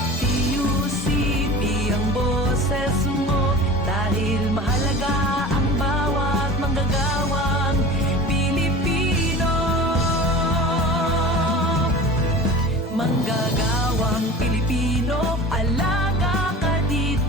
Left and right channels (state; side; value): normal; both; correlation 0.38